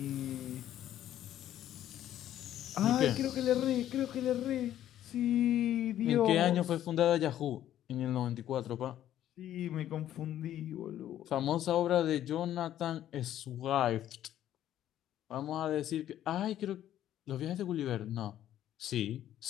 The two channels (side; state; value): right; quieter; 11.8 dB